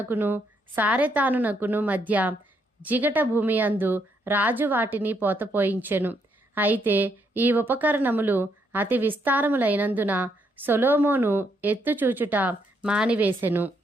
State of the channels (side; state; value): both; normal; correlation 0.75